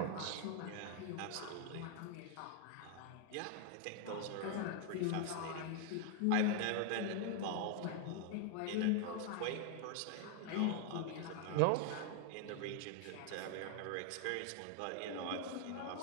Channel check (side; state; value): both; different; correlation 0.00